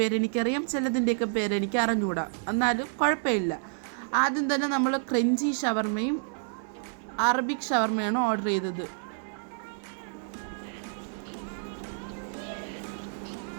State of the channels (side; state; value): left; silent; 58 dB below the other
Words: പേരെനിക്കറിയാം, ചിലതിൻ്റെയൊക്കെ പേരെനിക്ക് അറിഞ്ഞുകൂടാ, എന്നാലും കുഴപ്പമില്ല. ആദ്യം തന്നെ നമ്മൾ ക്രഞ്ചി ഷവർമയും അറബിക് ഷവർമയാണ് ഓർഡർ ചെയ്തത്.